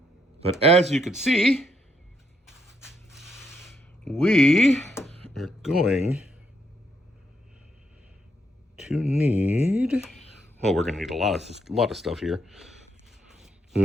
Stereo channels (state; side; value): normal; both; correlation 0.76